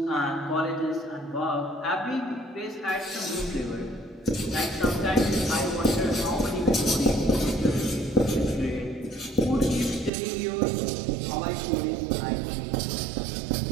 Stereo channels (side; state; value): left; drops out; at 10.1 s